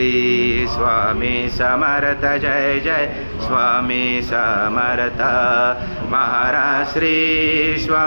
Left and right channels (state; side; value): inverted; both; correlation -1.00